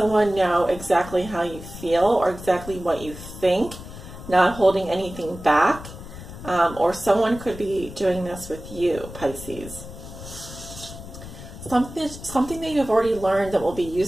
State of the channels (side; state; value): left; noise; rumble, 13 dB below the sound